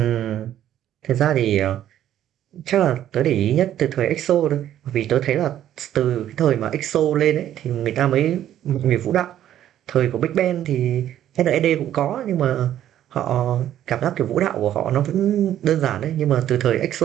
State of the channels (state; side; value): quieter; left; 11.5 dB